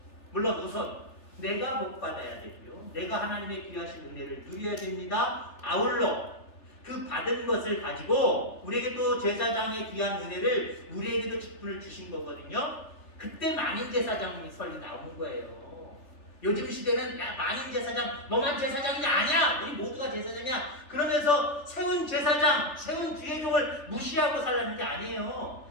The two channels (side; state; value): right; late; 3.3 ms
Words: 물론 우선 내가 복 받아야 되고요. 내가 하나님의 귀하신 은혜를 누려야 됩니다. 아울러 그 받은 것을 가지고 우리에게 또 제사장의 귀한 은혜를 우리에게도 직분을 주신 거거든요. 그때 만인 제사장이 설이 나오는 거예요. 요즘 시대는 야, 만인 제사장, 너만 제사장이 아니야. 우리 모두가 제사장이야. 그러면서 세운 제사장, 세운 주의종을 무시하고 살라는 게 아니에요.